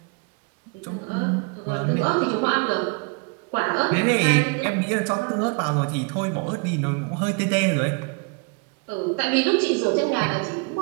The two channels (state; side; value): quieter; left; 32.5 dB